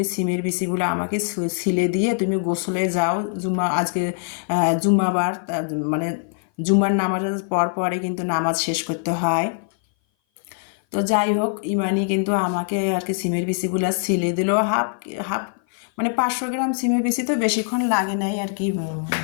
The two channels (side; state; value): right; silent; 58 dB below the other